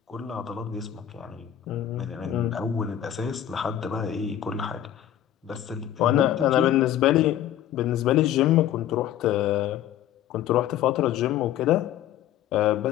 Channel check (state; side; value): quieter; right; 11.4 dB